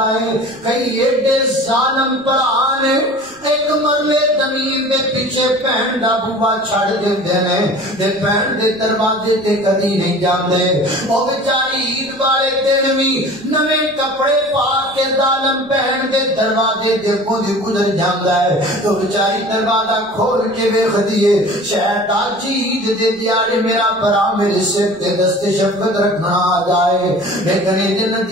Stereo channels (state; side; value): noise; left; rumble, 30 dB below the sound